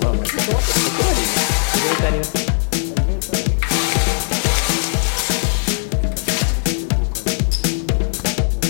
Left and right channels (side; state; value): right; silent; 67 dB below the other